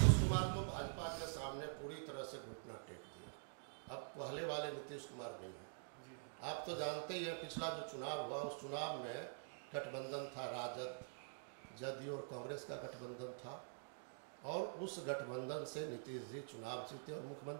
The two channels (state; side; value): silent; left; digital silence